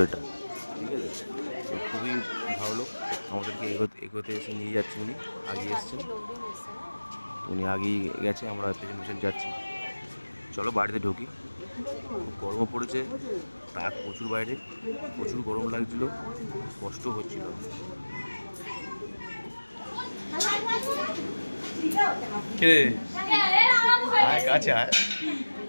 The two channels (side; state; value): both; inverted; correlation -1.00